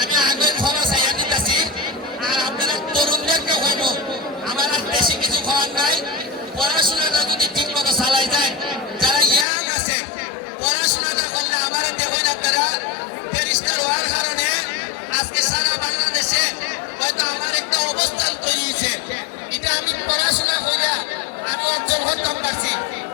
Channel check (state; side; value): drops out; right; at 9.5 s